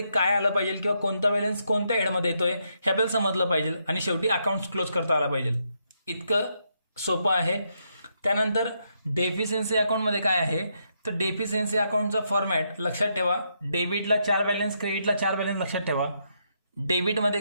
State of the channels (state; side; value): inverted; both; correlation -0.78